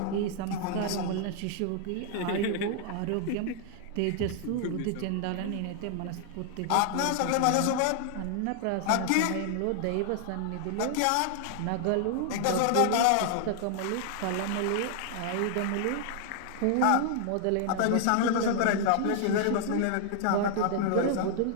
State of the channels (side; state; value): both; different; correlation 0.00